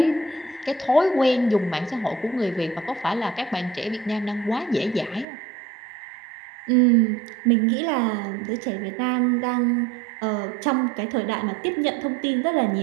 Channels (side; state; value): left; drops out; at 5.2 s